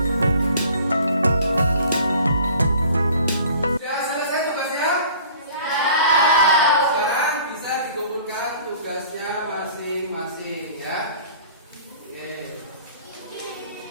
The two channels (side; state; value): both; inverted; correlation -0.48